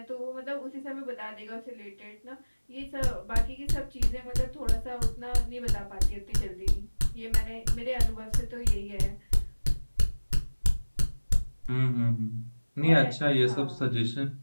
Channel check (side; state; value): both; inverted; correlation -1.00